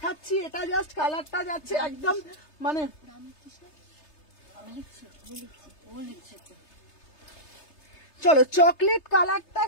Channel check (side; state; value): right; late; 3.3 ms